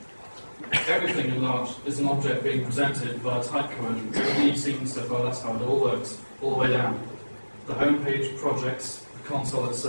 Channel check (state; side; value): inverted; both; correlation -1.00